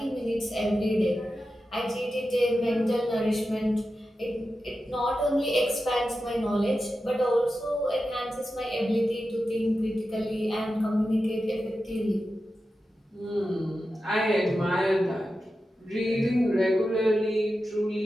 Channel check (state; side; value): normal; both; correlation 0.91